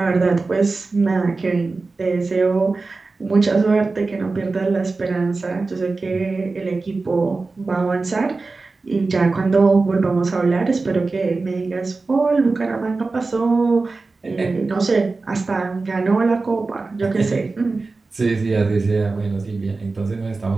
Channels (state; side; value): quieter; left; 3.8 dB